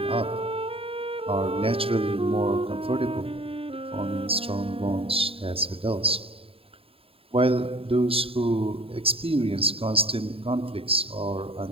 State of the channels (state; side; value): late; left; 0.27 ms